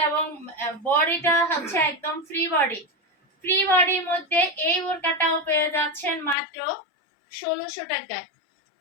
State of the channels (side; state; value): right; drops out; at 6.4 s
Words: এবং বডিটা হচ্ছে একদম ফ্রি বডির মধ্যে এই বোরকাটাও পেয়ে যাচ্ছেন মাত্র 1600 টাকায়।